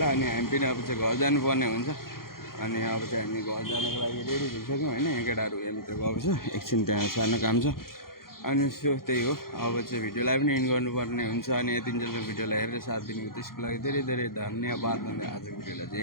अनि हामी पनि अब चाहिँ घर जानुपर्ने हुन्छ। अनि अब चाहिँ हामी घर जानको लागि रेडी भइसक्यौँ होइन। यहाँ केटाहरू यहाँभित्र गएको छ एकछिन त्यहाँ सानो काम छ। अनि सो त्यही हो अब चाहिँ भिडियोलाई पनि एन्ड गर्नुपर्ने हुन्छ। अनि यतिन्जेलको भिडियोलाई हेरेर साथ दिनुभयो त्यसको लागि धेरै धेरै धन्यवाद भन्दै आजको भिडियोलाई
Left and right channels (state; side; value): late; right; 0.92 ms